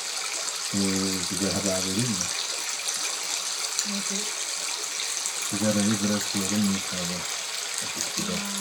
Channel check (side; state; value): both; identical; correlation 1.00